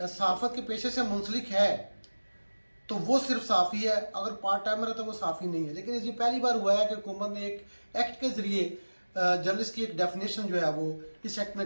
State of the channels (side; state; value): both; inverted; correlation -1.00